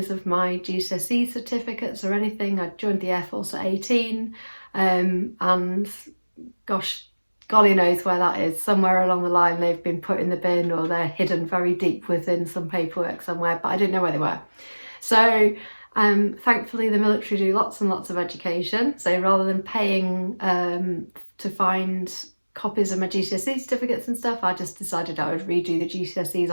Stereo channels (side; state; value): both; inverted; correlation -1.00